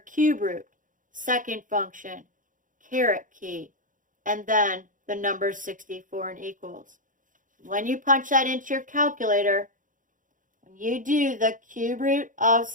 root, second function, caret key, and then the number 64 and equals. When you punch that into your calculator, when you do the cube root of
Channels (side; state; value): left; late; 0.38 ms